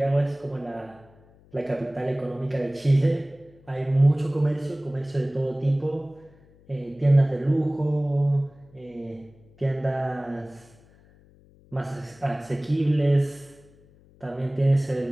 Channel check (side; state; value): left; noise; hum, 28 dB below the sound